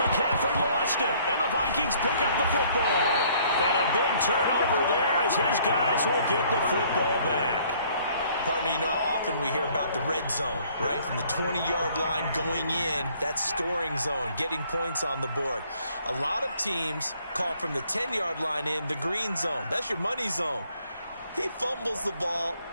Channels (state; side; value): inverted; both; correlation -0.61